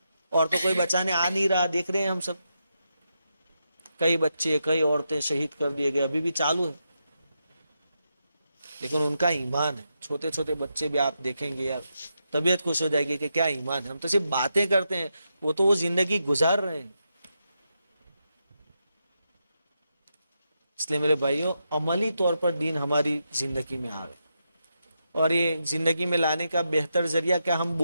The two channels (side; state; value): both; inverted; correlation -0.85